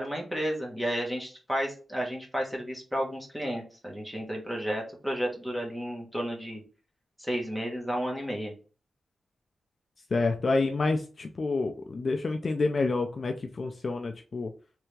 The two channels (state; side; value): normal; both; correlation 0.93